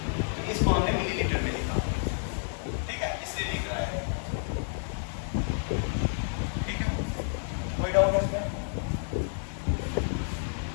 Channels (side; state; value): right; silent; digital silence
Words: तो इसको हमने मिलीलीटर में लिखा, ठीक है, इसलिए लिख रहा है, ठीक है। कोई डाउट है इसमें।